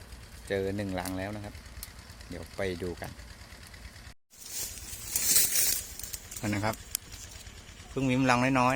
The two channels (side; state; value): both; identical; correlation 1.00